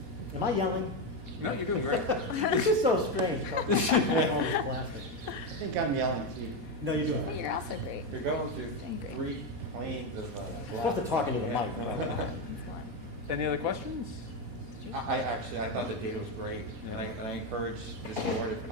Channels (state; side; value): late; left; 4.2 ms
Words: Am I yelling? No, you're doing great. This is so strange. I think I'm yelling, Steve. No, you're doing it. You're also great. You're going through Doing great. 3 planes of You're supposed to talk into the mic. It's fun. Any other questions? I thought the data was great, and I encourage this board, if